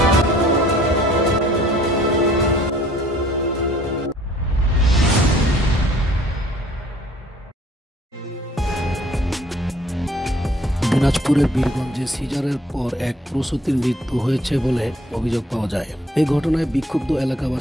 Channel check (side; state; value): both; normal; correlation 0.58